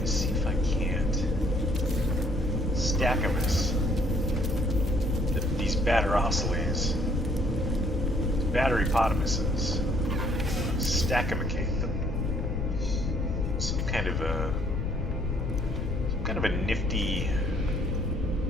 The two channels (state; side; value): noise; left; rumble, 2 dB below the sound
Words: is see if I can't stack them as these batterosilies, batterypotamuses, stackimicate them. Some kind of a nifty